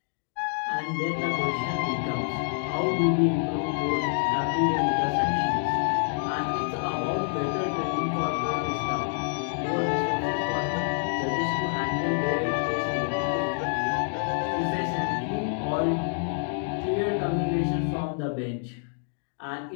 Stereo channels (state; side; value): silent; right; digital silence